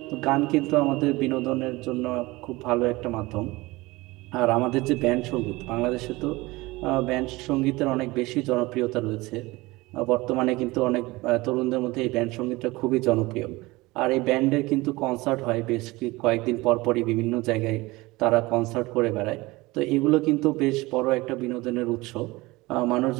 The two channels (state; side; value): quieter; left; 21.3 dB